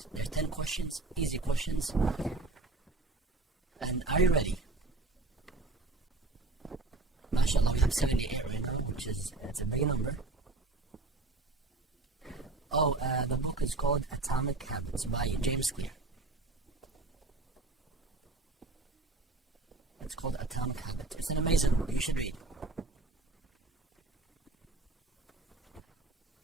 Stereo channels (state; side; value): quieter; left; 3.2 dB